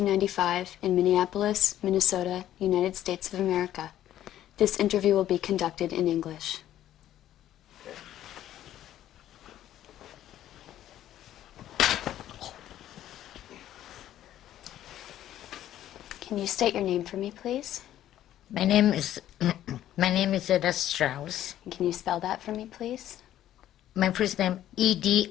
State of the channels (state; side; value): quieter; right; 12.3 dB